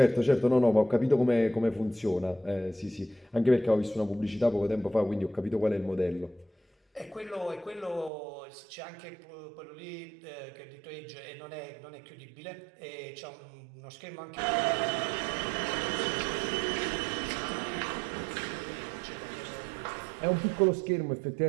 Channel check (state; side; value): drops out; left; at 8.1 s